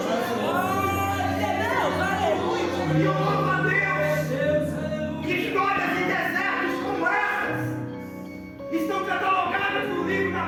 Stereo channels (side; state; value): both; identical; correlation 1.00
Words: E eu louvo a Deus que histórias de desertos como essas estão catalogadas no livro da